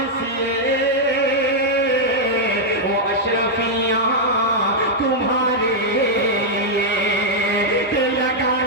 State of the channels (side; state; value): both; normal; correlation -0.04